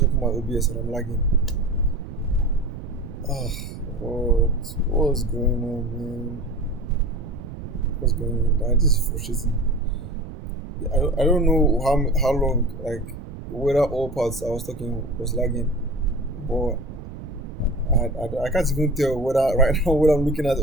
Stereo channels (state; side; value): noise; right; rumble, 11 dB below the sound